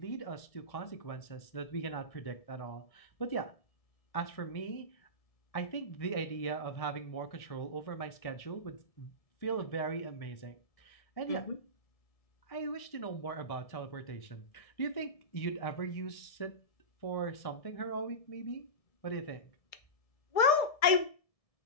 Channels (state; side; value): late; right; 1.7 ms